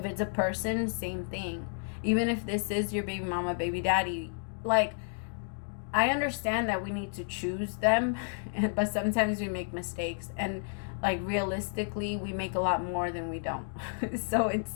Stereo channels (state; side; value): silent; right; digital silence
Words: it's a person, same thing. Even if this is your baby mama, baby daddy, like, I understand that we need to choose them, but sometimes we make mistakes, and like realistically we make a lot more than we don't. So